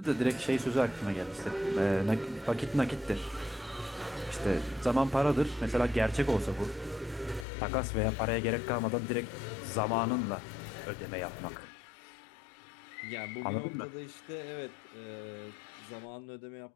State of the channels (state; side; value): drops out; right; at 7.5 s